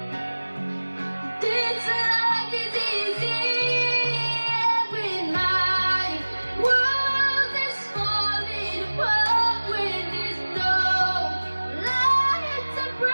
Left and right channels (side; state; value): both; inverted; correlation -1.00